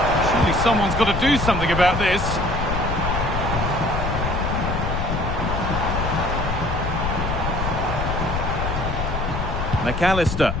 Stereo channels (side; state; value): left; noise; rumble, 3 dB below the sound